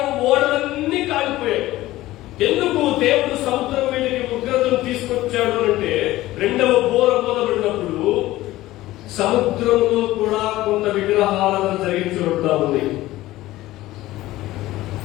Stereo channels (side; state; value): right; quieter; 16.6 dB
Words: ఓడలన్నీ కాలిపోయాయి. ఎందుకు దేవుడు సముద్రం మీదకి ఉగ్రతను తీసుకొచ్చాడు అంటే, రెండవ బోర మొదలుపడినప్పుడు సముద్రంలో కూడా కొంత విగ్రహాలను జరిగించబడతా ఉంది.